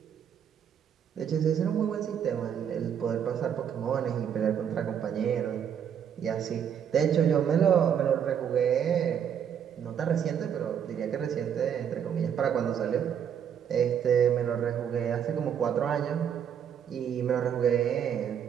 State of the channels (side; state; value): left; quieter; 8.5 dB